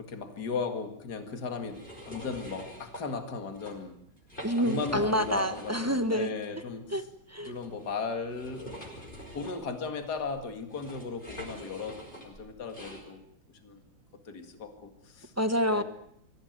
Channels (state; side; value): normal; both; correlation -0.10